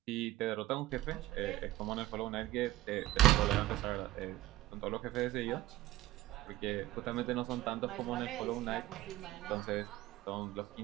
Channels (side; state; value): left; quieter; 15.9 dB